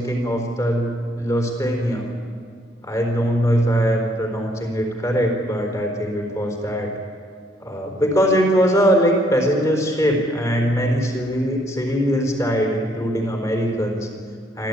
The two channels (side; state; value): both; normal; correlation 0.68